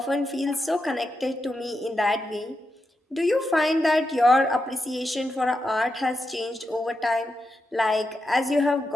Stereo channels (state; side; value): normal; both; correlation 0.87